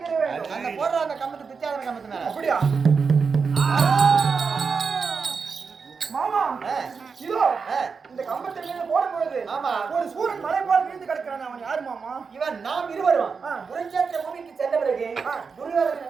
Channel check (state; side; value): quieter; left; 5.3 dB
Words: வேண்டும். அந்த போடுற அந்த கம்பத்து பிச்சாதன கம்பத்து மேல அப்படியா மாமா இதோ இந்த கம்பத்தில் மேல போடும் பொழுது ஆமா. ஒரு சூரன் மலை போல விழுந்து கிடக்கிறான். அவன் யாரு மாமா? இவன் நாம் இருவரும் ஆ. குருச்சேத்திர பூமிக்கு சென்ற பிறகு ஆ. துரியோதனன்